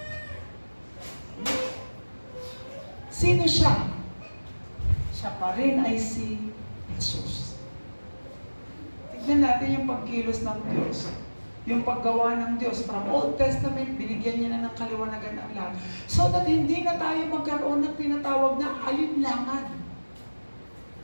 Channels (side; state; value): both; inverted; correlation -1.00